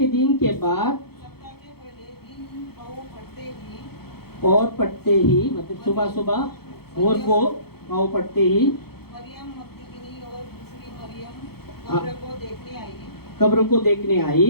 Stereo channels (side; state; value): right; late; 0.96 ms